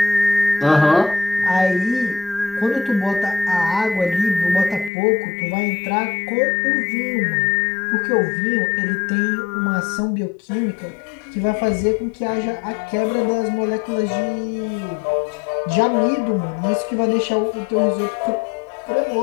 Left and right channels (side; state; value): right; drops out; at 4.9 s